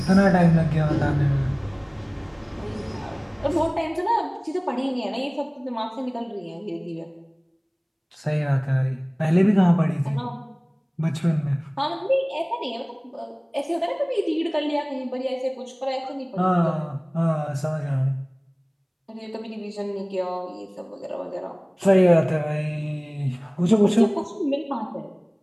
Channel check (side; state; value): both; identical; correlation 1.00